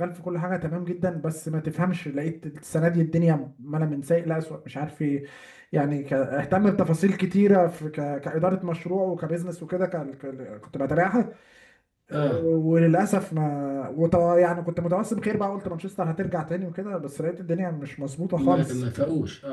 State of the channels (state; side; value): identical; both; correlation 1.00